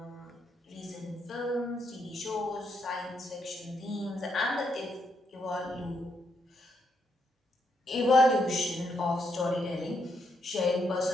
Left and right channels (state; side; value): normal; both; correlation 0.78